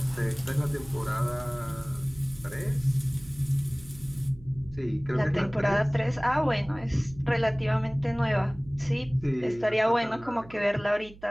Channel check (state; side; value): noise; right; hum, 20 dB below the sound